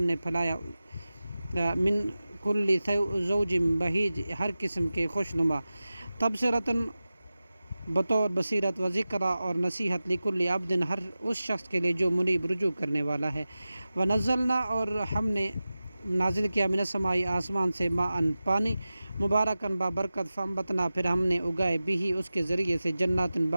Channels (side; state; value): both; inverted; correlation -0.95